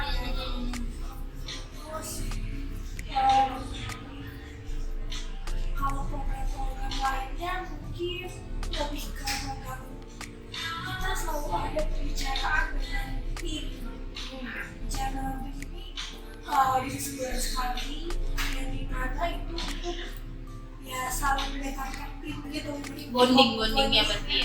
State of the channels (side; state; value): both; identical; correlation 1.00